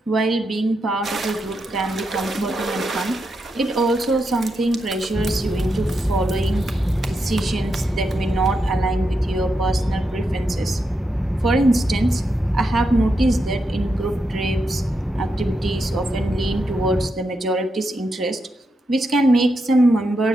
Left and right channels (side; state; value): both; normal; correlation 0.84